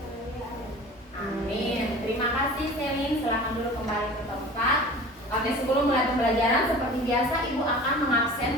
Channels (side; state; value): both; normal; correlation 0.40